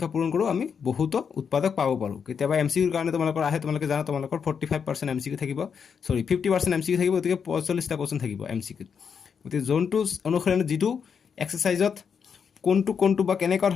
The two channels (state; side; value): quieter; right; 6.7 dB